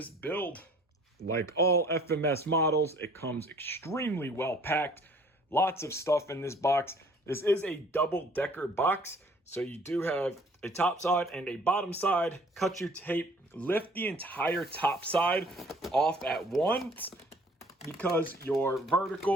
build. Like all FMS models, it comes extremely well packed. Lots of stuff in this box. This is a double-decker box. So you do have a top side and a bottom side. Cut your tape, lift the entire top side off at once because your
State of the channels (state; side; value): normal; both; correlation 0.55